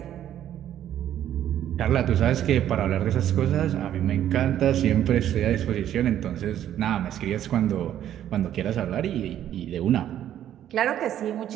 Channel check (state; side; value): quieter; left; 11.1 dB